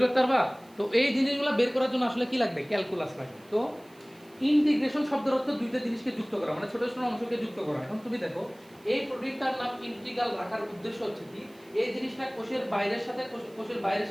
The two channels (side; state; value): right; noise; hiss, 28 dB below the sound